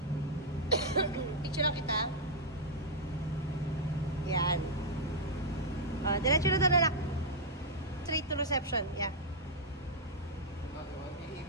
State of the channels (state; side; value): normal; both; correlation -0.05